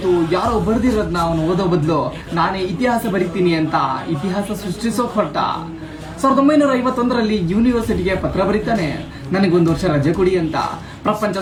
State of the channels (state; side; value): identical; both; correlation 1.00